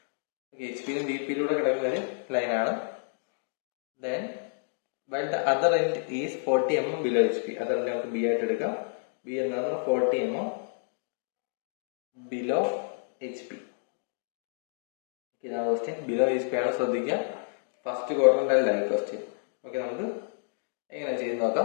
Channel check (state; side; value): silent; right; digital silence